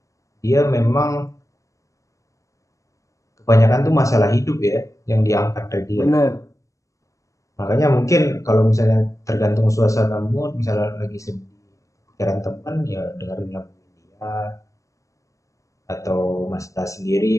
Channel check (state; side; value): late; right; 0.16 ms